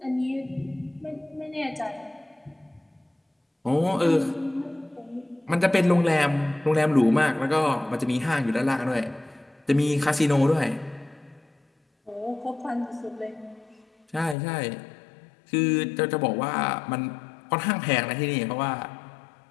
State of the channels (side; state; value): right; drops out; at 14.4 s